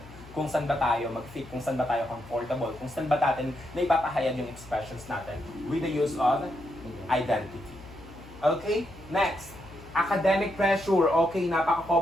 Kung saan ba tayo mag-fit, kung saan ba tayo comfortable, kung saan ba natin na ipapahayag yung expressions natin with the use of identity. Okay? Next. Academic pressure. Okay,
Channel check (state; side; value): noise; left; hum, 19 dB below the sound